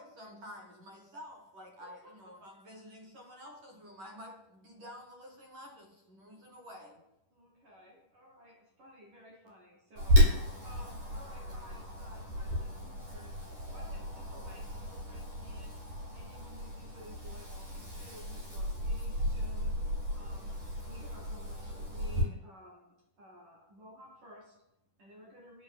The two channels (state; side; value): late; left; 10 ms